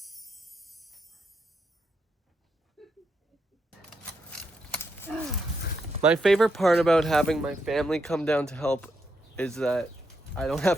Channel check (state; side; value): normal; both; correlation 0.81